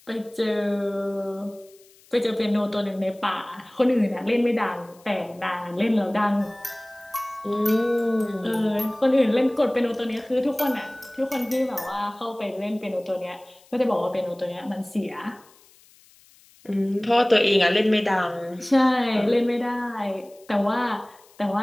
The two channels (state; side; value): noise; left; hiss, 28 dB below the sound